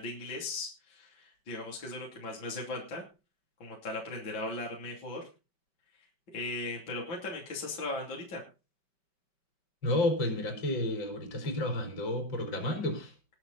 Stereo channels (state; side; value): late; right; 5.2 ms